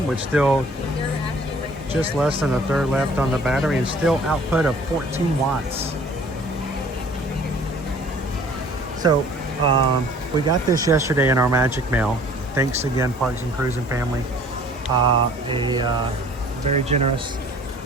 with still just less than a third left on the battery and still output of 14 watts. So we got this yesterday in our magic mail. Thanks again, Parks and Cruising family. A very generous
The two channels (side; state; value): both; normal; correlation 0.52